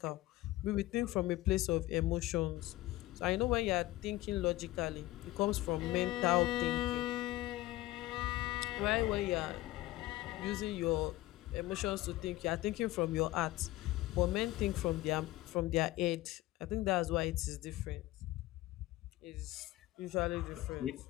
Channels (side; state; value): right; quieter; 17.6 dB